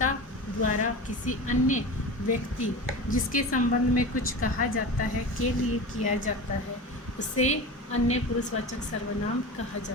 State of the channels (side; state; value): both; normal; correlation 0.30